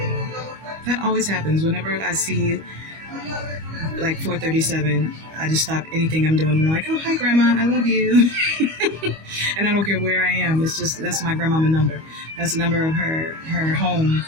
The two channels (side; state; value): left; late; 25 ms